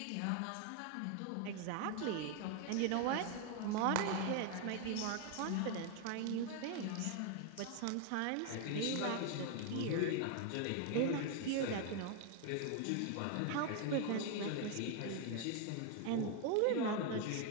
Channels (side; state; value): both; different; correlation 0.01